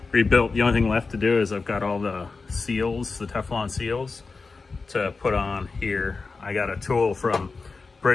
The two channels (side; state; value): right; quieter; 4.2 dB